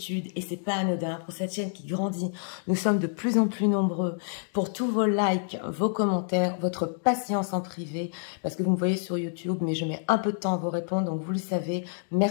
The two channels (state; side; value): silent; right; digital silence